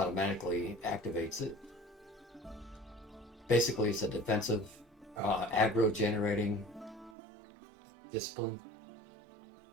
activates it. Basically, it's a defensive, aggro generating discipline.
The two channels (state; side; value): drops out; left; at 7.2 s